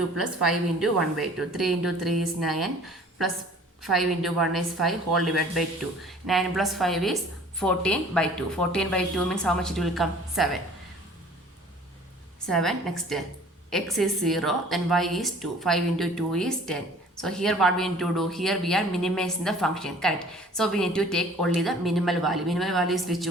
plus 5 into 1 by 2. 3 into 3 is 9 plus 5 into 1 is 5 whole divided by 2. 9 plus 5 is 14 by 2. 14 by 2 means how much it will come? 7. 7. Next x is 0, then y is 2. 5 into 2 is 10. So here what we need to do? Here we are minimizing the function, correct? So we need to take only the minimal value. Minimal value is which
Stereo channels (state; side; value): normal; both; correlation 0.50